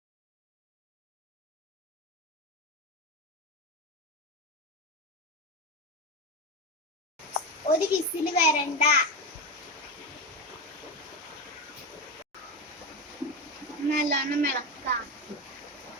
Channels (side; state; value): both; normal; correlation 0.17